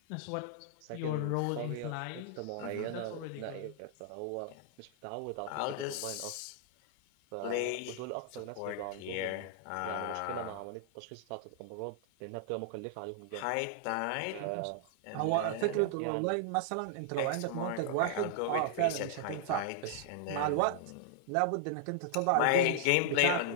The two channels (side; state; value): both; different; correlation -0.01